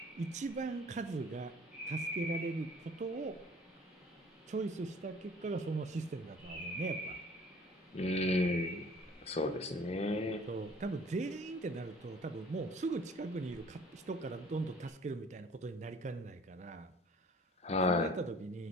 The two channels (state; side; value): normal; both; correlation 0.52